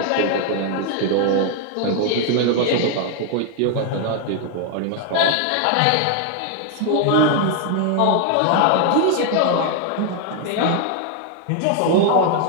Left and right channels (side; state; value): both; different; correlation 0.00